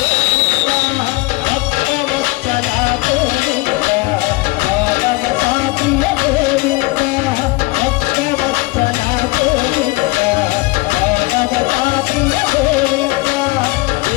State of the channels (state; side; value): quieter; right; 23.2 dB